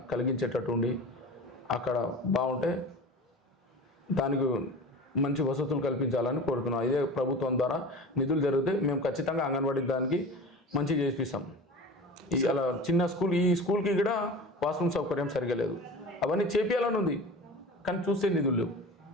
కలిగించేటట్టు ఉండి అక్కడ బాగుంటే దానికి మంచి వసతులు కల్పించాలని కోరుతున్నాం. ఇదే ప్రభుత్వం ద్వారా నిధులు జరిగితే మేము ఖచ్చితంగా అంగన్వాడీ దానికి మంచిగా చేపిస్తాం. అలా చిన్న స్కూల్, ఈ స్కూల్కి కూడా వాష్రూమ్ సౌకర్యం సరిగా లేదు, అవన్నీ చేపియాలని ఉంది కానీ చూస్తే నిధులు లేవు.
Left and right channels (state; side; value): normal; both; correlation 0.35